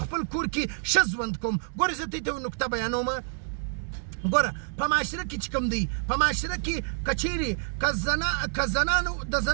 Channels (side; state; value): left; silent; 60 dB below the other